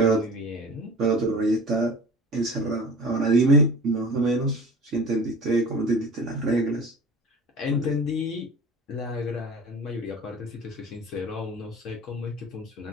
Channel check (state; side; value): normal; both; correlation 0.39